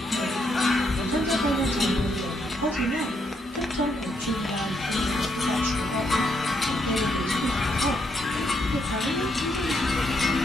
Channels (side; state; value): both; normal; correlation 0.76